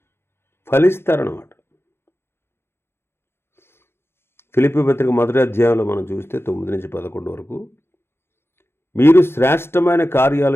ఫలిస్తారన్నమాట. ఫిలిప్పీ పత్రిక మొదటి అధ్యాయంలో మనం చూస్తే 9-11 వరకు, మీరు శ్రేష్టమైన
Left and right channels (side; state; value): right; late; 0.12 ms